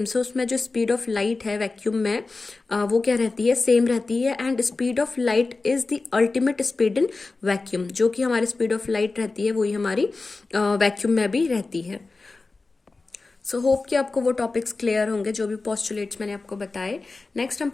है उसमें जो स्पीड ऑफ लाइट है वैक्यूम में वो क्या रहती है, सेम रहती है। And speed of light is the ultimate speed in vacuum. जो कि हमारी स्पीड ऑफ लाइट रहती है वही हमारी वैक्यूम में भी रहती है। सो होप कि आपको वो टॉपिक्स क्लियर होंगे जो भी पोस्टुलेट्स मैंने आपको बताए। नेक्स्ट हम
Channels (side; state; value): right; quieter; 3.7 dB